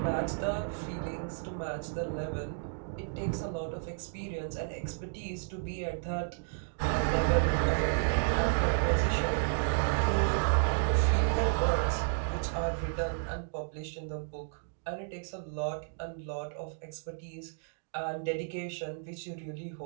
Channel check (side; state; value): left; silent; digital silence